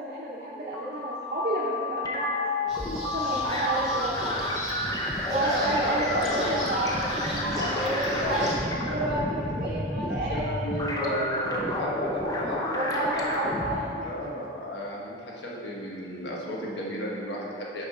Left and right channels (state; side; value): normal; both; correlation 0.16